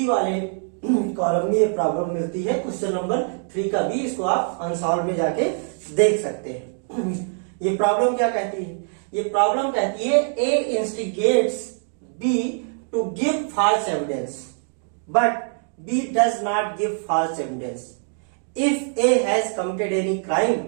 वाले कॉलम में ये प्रॉब्लम मिलती है। क्वेश्चन नंबर 3 का बी, इसको आप अनसॉल्व में जाके देख सकते हैं। ये प्रॉब्लम क्या कहती है? ये प्रॉब्लम कहती है A instigates B to give false evidence but B does not give false evidence if A has committed any crime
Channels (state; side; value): silent; left; 56 dB below the other